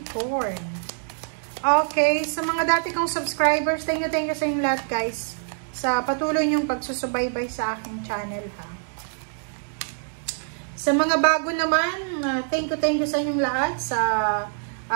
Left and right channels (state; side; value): silent; left; digital silence